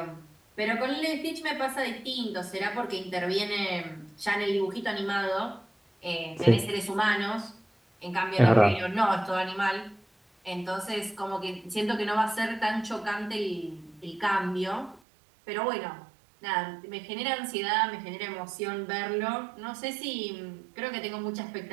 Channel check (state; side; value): drops out; left; at 15.0 s